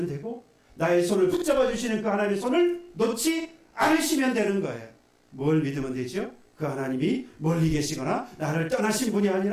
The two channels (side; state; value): both; identical; correlation 1.00